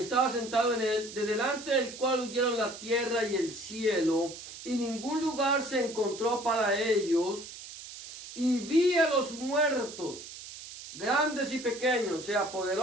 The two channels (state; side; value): noise; right; hiss, 13 dB below the sound